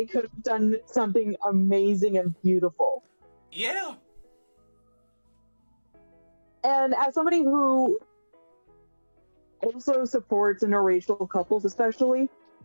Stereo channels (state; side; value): inverted; both; correlation -1.00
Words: could have done something amazing and beautiful. Yeah. And as somebody who also supports interracial couples, especially.